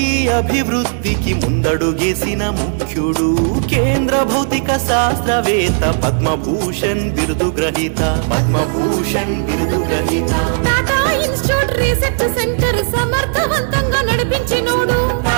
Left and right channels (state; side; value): silent; left; digital silence